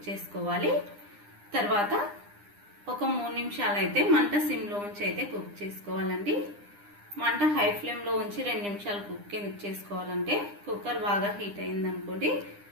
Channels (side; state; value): left; late; 9.9 ms